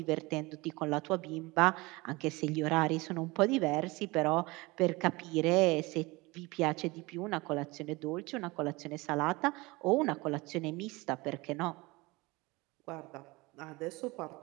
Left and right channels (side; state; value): left; quieter; 23.1 dB